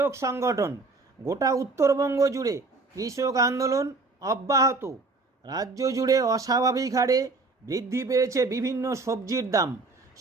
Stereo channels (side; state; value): left; quieter; 3.6 dB